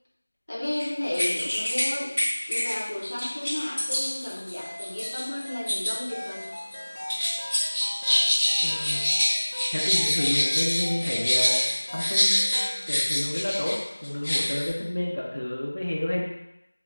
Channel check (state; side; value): inverted; both; correlation -1.00